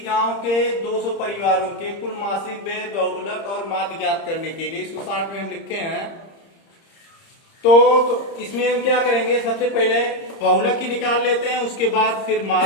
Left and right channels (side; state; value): right; late; 30 ms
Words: गांव के 200 परिवारों के कुल मासिक व्यय बहुलक और माध्य ज्ञात करने के लिए, इसको 60 में हम लिखे हैं। तो इसमें हम क्या करेंगे, सबसे पहले बहुलक ही निकाल लेते हैं, उसके बाद फिर